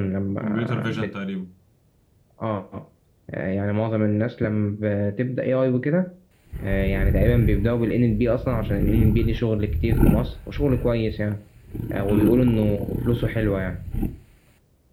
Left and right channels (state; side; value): identical; both; correlation 1.00